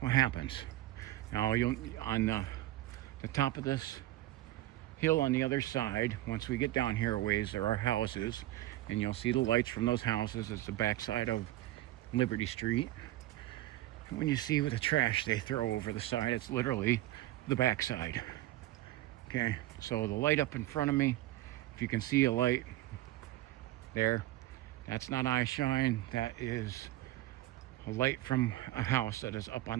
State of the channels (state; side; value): quieter; left; 16.0 dB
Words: happens. Now, on the top of this hill on the other side, once we get down here a ways, there are houses, and you'll see the lights from those houses. It's the backside of Liberty Street. And when you see with the trash they throw over the side, it's literally the backside. Okay, so the light up in front of me, if you can see a light there, that's not eye shine. That is a light from a house that is up